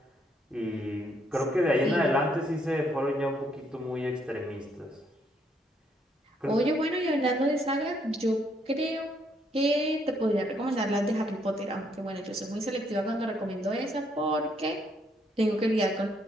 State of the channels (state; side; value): normal; both; correlation 0.71